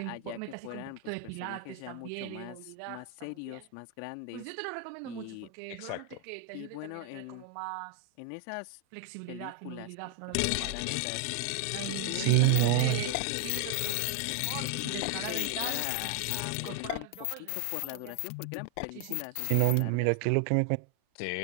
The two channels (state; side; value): different; both; correlation 0.00